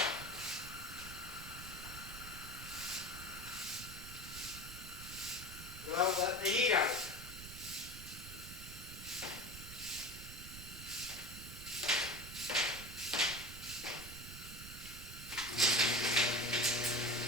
Without letting the heat out.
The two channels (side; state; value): right; noise; rumble, 12 dB below the sound